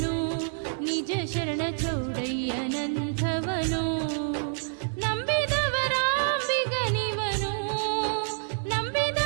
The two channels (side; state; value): left; silent; digital silence